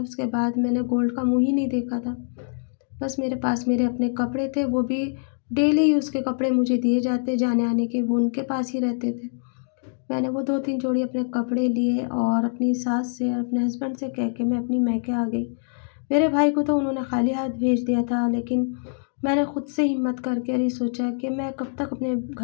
बाद मैंने गोल्ड का मुँह ही नहीं देखा था। बस मेरे पास मेरे अपने कपड़े थे, वो भी डेली यूज़ के कपड़े मुझे दिए जाते जाने-आने के, वो उनके पास ही रहते थे। मैंने वो 2-3 जोड़ी अपने कपड़े लिए और अपनी सास से और अपने हस्बैंड से कह के मैं अपनी मायके आ गई। मेरे भाई को तो उन्होंने खाली हाथ भेज दिया था, लेकिन मैंने खुद से हिम्मत करके ये सोचा कि मैं कब तक अपने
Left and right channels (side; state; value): right; silent; digital silence